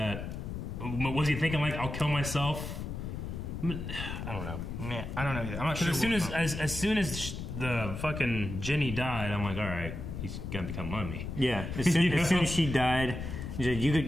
Was he thinking, like, I'll kill myself? I don't know. Yeah, I don't know either. I'm not sure. As soon as the fucking Jenny died, I'm like, all right, he's gonna become mummy. Yeah, as soon as she died, you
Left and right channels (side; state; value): left; noise; rumble, 6 dB below the sound